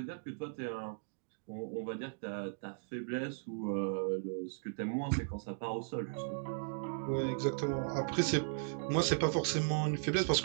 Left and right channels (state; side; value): silent; left; digital silence